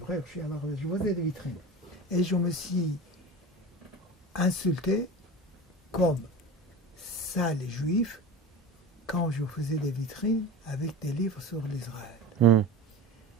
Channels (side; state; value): both; normal; correlation 0.32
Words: je faisais des vitrines. Et je me suis insulté comme ça les juifs quand je faisais des vitrines avec des livres sur l'Israël.